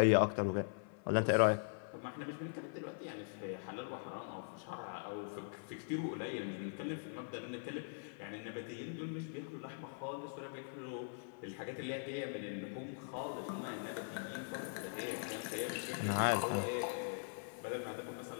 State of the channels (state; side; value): silent; right; 50 dB below the other